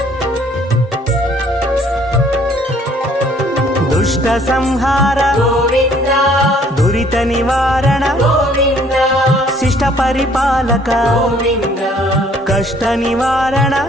దుష్ట సంహార గోవింద దురిత నివారణ గోవింద శిష్ట పరిపాలక గోవింద కష్ట నివారణ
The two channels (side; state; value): both; normal; correlation 0.60